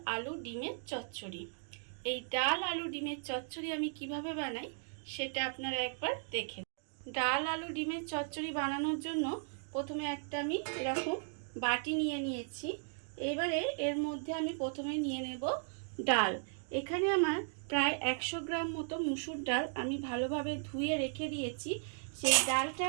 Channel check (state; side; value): silent; left; digital silence